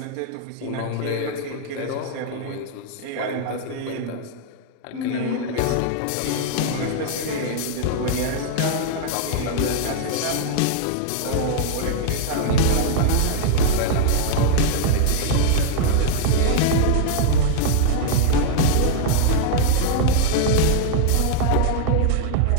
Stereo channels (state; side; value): different; both; correlation 0.00